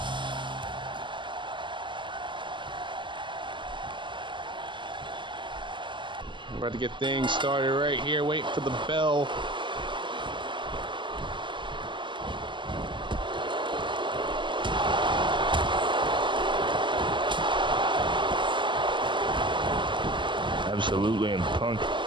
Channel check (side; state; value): left; late; 0.24 ms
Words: We're about to get things started right here. Waiting for the bell. Absolutely, and Punk